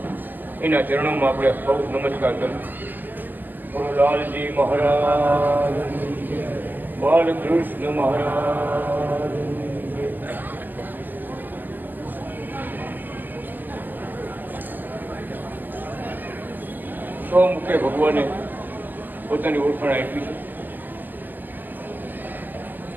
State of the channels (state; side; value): late; left; 0.087 ms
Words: એના ચરણોમાં આપણે સૌ નમસ્કાર કરીએ. લાલજી મહારાજ, બાલકૃષ્ણ મહારાજ. સ્વમુખે ભગવાને પોતાની ઓળખાણ આપી છે.